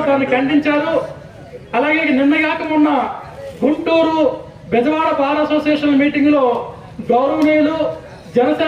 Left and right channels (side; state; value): both; identical; correlation 1.00